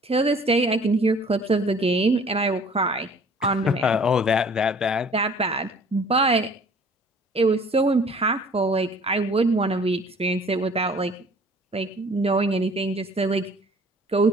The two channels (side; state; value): both; normal; correlation 0.52